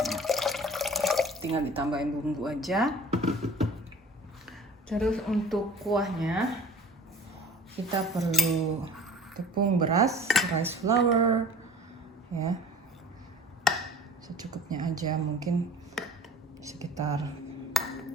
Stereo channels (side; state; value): both; normal; correlation 0.43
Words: Tinggal ditambahin bumbu aja. Terus untuk kuahnya kita perlu tepung beras, rice flour ya, secukupnya aja, mungkin sekitar